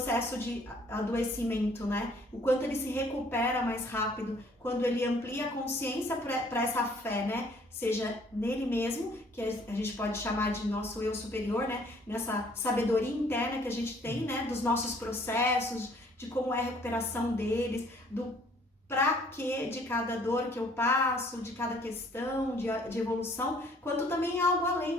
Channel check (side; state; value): both; normal; correlation 0.59